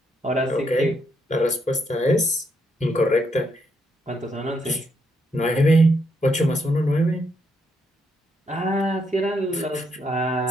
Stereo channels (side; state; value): both; normal; correlation 0.77